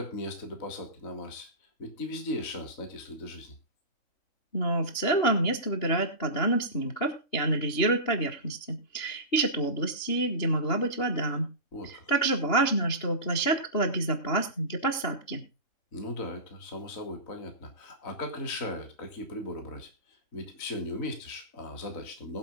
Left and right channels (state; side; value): late; right; 2.9 ms